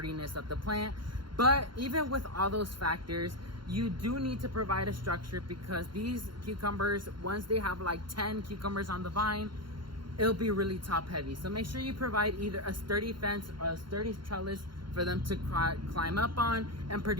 of the plant, but even with all those factors, you do need to provide a structure, because these cucumbers, once they have like 10 cucumbers on the vine, it'll be really top heavy. So make sure you provide either a sturdy fence or a sturdy trellis for them to climb up on and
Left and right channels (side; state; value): left; late; 0.73 ms